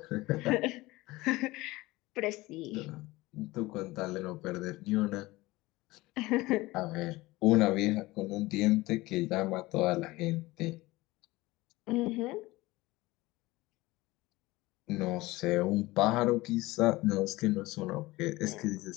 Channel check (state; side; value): quieter; right; 19.9 dB